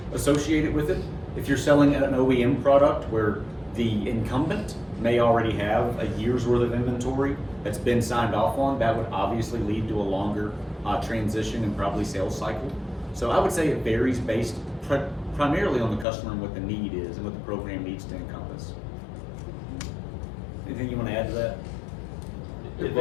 associated with it. If you're selling an OEM product where the incumbent may already have a year's worth of inventory that's been signed off on, that would obviously lead to a longer transition and probably sales cycle. So I would say it varies based primarily on the customer and what the need is and what the program needs to encompass. Anything you want to add to that? It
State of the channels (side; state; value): right; drops out; at 16.1 s